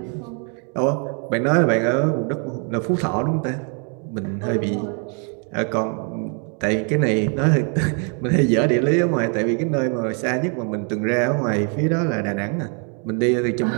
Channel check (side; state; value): left; quieter; 39.3 dB